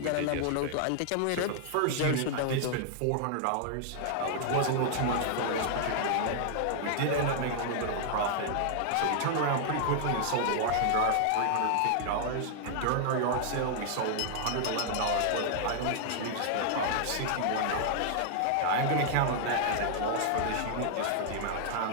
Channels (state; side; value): different; both; correlation -0.01